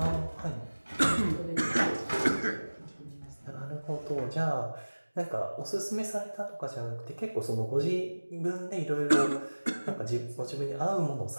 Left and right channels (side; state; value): both; inverted; correlation -1.00